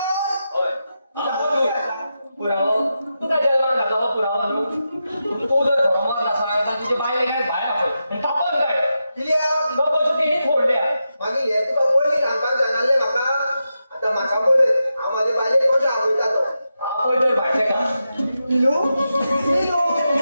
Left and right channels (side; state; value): both; inverted; correlation -0.88